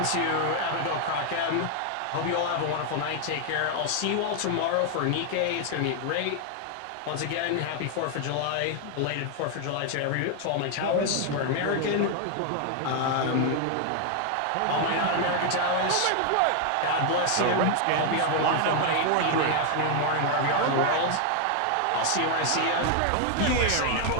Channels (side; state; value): both; different; correlation 0.00